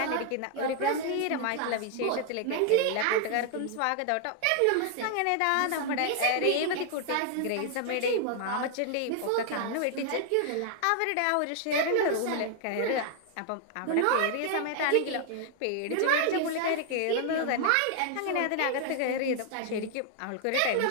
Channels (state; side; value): different; both; correlation 0.00